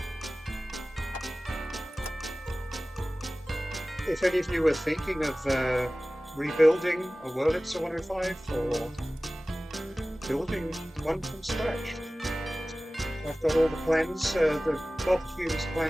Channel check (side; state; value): both; normal; correlation 0.97